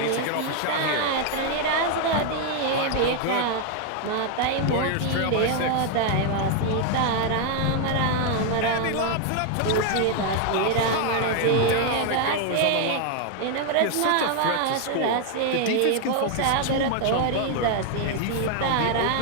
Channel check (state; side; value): different; both; correlation 0.00